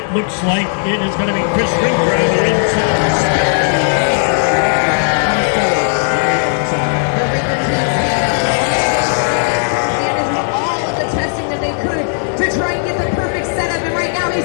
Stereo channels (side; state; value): right; silent; digital silence